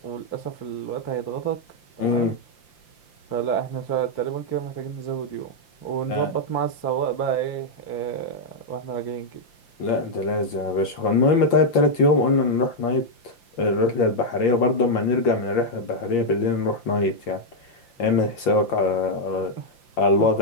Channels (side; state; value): right; late; 5.8 ms